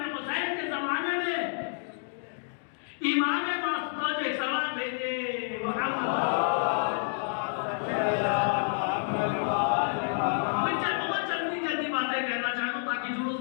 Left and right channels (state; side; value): silent; right; digital silence